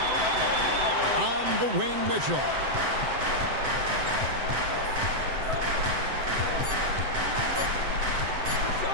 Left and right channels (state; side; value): late; left; 7.8 ms